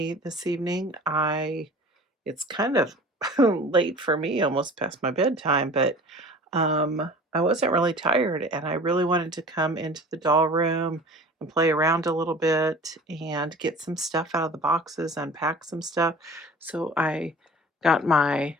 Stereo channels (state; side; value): normal; both; correlation 0.42